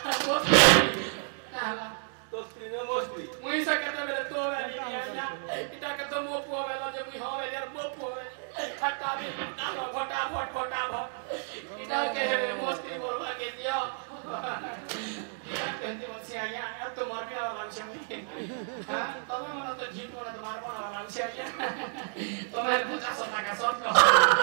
तो स्क्रीन में मोस्टली मुई से कहते मेरे तो वाली आया इटा के तो मो पो वेला जे मुई होवे यार मो पो हटा भी फटाफट इटा के मोस्टली बोलवा के दियो कहते बच्चे आया यार तो मर भी वाला लक्ष्य में हां तब मन तो जीत वाला तो मार वाला लक्ष्य आया तो मैं 50 টাকা শর্ট কর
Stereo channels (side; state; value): left; silent; 57 dB below the other